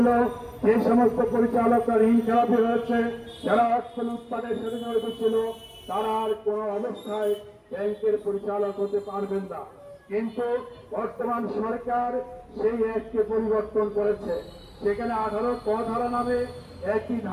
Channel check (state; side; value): identical; both; correlation 1.00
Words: যে সমস্ত পরিচালকরা ঋণ খেলাপি হয়েছে, যারা অর্থ লুটপাটের সাথে জড়িত ছিল, তারা আর কোন অবস্থায় ব্যাংকের পরিচালক হতে পারবেন না। কিন্তু বর্তমান সরকার সেই অ্যাক্টকে পরিবর্তন করেছে। সেখানে 18 ক ধারা নামে একটি